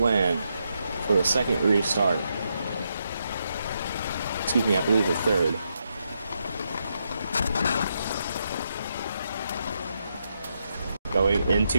for the second restart. Excuse me, I believe the third. Going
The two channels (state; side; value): inverted; both; correlation -0.81